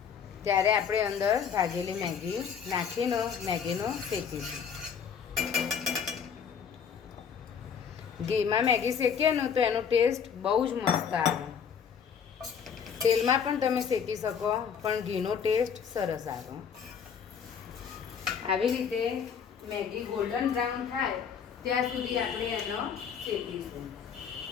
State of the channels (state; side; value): quieter; right; 7.1 dB